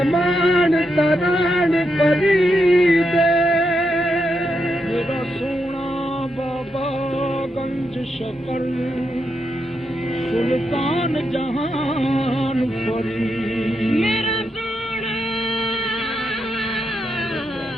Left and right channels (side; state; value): both; normal; correlation 0.83